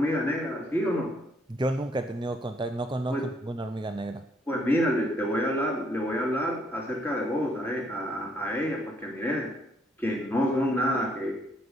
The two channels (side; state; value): both; normal; correlation 0.69